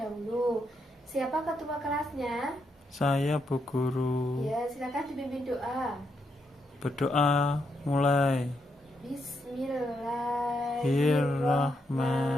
Siapa ketua kelasnya? Saya Bu Guru. Ya, silakan dipimpin doa. Berdoa mulai.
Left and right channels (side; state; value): both; normal; correlation 0.80